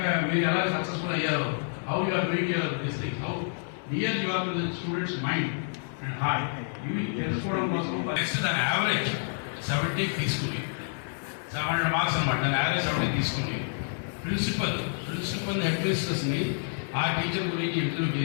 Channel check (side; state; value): right; silent; 59 dB below the other